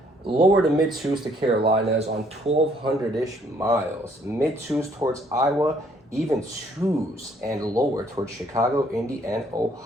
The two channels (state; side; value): normal; both; correlation 0.64